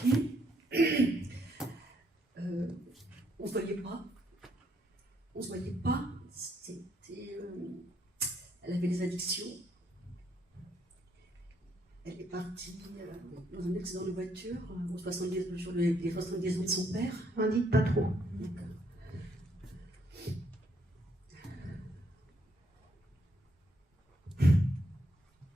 On se voyait pas. On se voyait pas. C'était... elle avait des addictions. Elle est partie dans un accident de voiture aux 70 jours les 70 ans de son père. N'en dites pas trop. Donc,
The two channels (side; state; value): both; normal; correlation 0.72